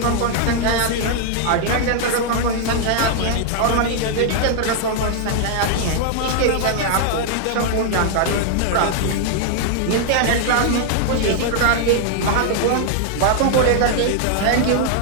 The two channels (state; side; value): different; both; correlation -0.01